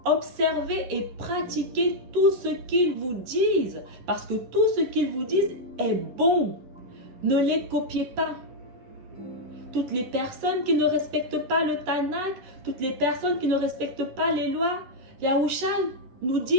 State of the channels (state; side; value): late; left; 11 ms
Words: observez et pratiquez tout ce qu'ils vous disent parce que tout ce qu'ils vous disent est bon. Ne les copiez pas. Toutes les personnes qui ne respectent pas le Tanakh, toutes les personnes qui ne respectent pas les lois, Yahusha nous